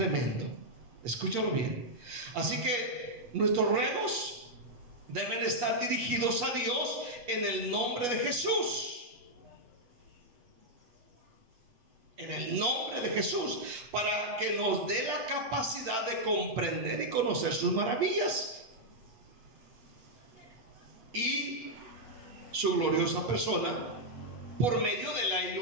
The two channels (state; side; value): late; left; 8.3 ms